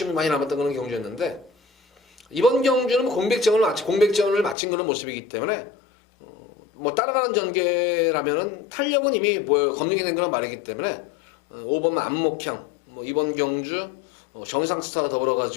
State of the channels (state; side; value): drops out; right; at 4.5 s